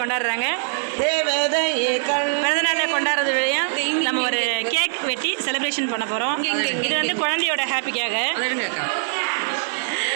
கொண்டாடுறாங்க. பிறந்தநாளை கொண்டாடுறது வழியா நம்ம ஒரு கேக் வெட்டி செலிப்ரேஷன் பண்ண போகிறோம். இது வந்து குழந்தையோட ஹாப்பிக்காக.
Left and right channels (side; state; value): left; silent; digital silence